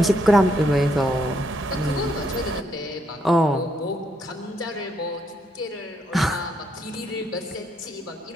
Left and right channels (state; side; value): normal; both; correlation 0.75